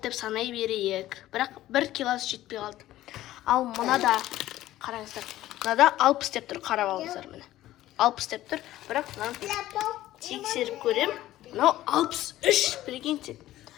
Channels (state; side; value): quieter; right; 14.8 dB